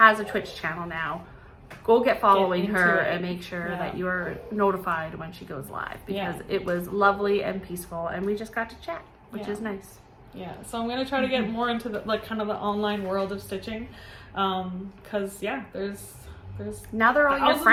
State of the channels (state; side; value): identical; both; correlation 1.00